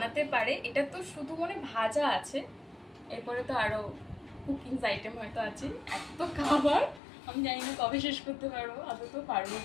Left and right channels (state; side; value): drops out; right; at 7.0 s